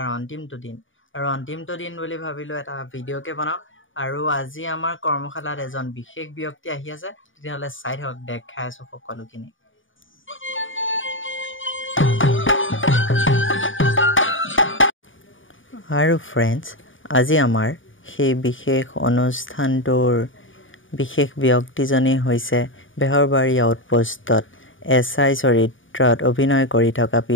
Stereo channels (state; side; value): late; right; 0.57 ms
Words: অন্তিমটো দিন আৰু অন্তিমটো দিন বুলি ভাবিলো এটা ভিডিওকে বনাও আৰু আজি আমাৰ কৰ্মশালাত এজন বিশেষ ব্যক্তি আহি আছে তেতিয়ালে চাই থাকক দেখাই আছো সকলোখিনি আৰু फ्रेंड्स আজি আমাৰ সেই বিশেষ অনুষ্ঠানটোৰ বিশেষ ব্যক্তিজনী হৈছে বেহৰবাৰী আউটপোষ্টত এসআই চৰিত্ৰত অভিনয় কৰি থকা